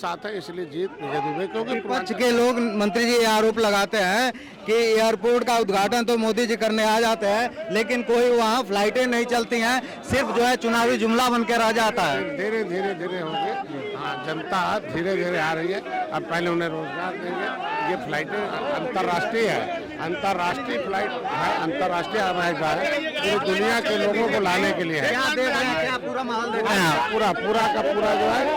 हैं। इसलिए जीत विजय दुबे। क्योंकि विपक्ष के लोग मंत्री जी आरोप लगाते हैं कि एयरपोर्ट का उद्घाटन तो मोदी जी करने आ जाते हैं, लेकिन कोई वहाँ फ्लाइटें नहीं चलती हैं, सिर्फ जो है चुनावी जुमला बन के रह जाता है। धीरे धीरे होंगे। हाँ, जनता धीरे धीरे आ रही है। अब पहले उन्हें रोजगार देंगे। ये फ्लाइटें अंतर्राष्ट्रीय है, अंतर्राष्ट्रीय फ्लाइट है, अंतर्राष्ट्रीय हवाई जहाज है, पूरी दुनिया के लोगों को लाने के लिए है। क्या देख रहे हैं? क्या पूरा माहौल देख रहे हैं? पूरा का पूरा जो है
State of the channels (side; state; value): both; identical; correlation 1.00